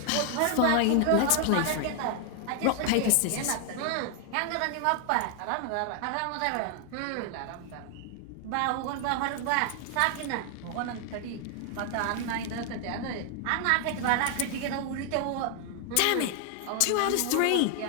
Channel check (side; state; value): both; different; correlation 0.00